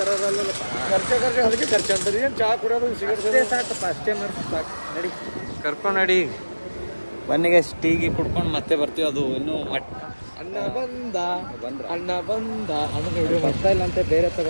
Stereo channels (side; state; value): both; inverted; correlation -1.00